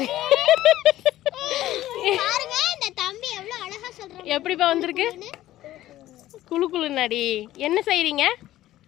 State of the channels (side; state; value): right; quieter; 14.5 dB